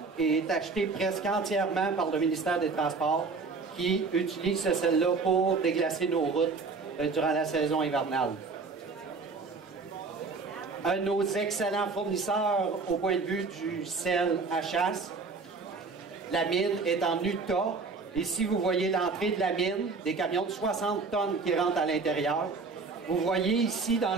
est acheté presque entièrement par le ministère des Transports, qui utilise ce sel-là pour déglacer nos routes durant la saison hivernale. Un de nos excellents fournisseurs au point de vue du sel à chasse, la mine est en Utah. Ici, vous voyez l'entrée de la mine, des camions de 60 tonnes qui rentrent à l'intérieur. Vous voyez ici, dans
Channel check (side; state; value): left; quieter; 4.3 dB